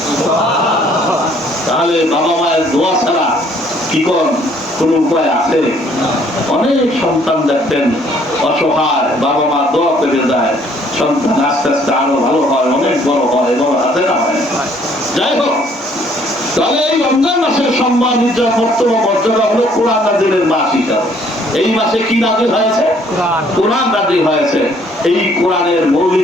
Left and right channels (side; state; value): both; normal; correlation 0.62